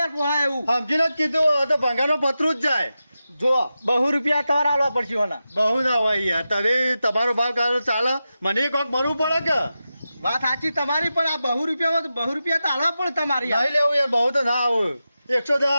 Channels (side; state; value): both; inverted; correlation -0.91